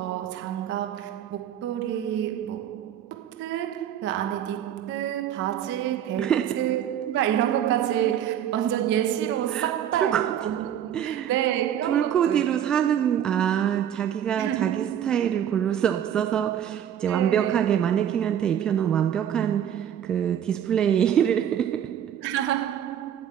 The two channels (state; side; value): quieter; left; 9.8 dB